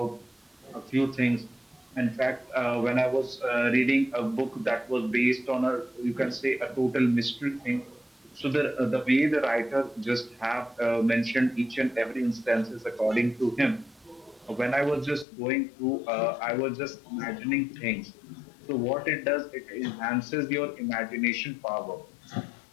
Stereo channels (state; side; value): drops out; right; at 15.2 s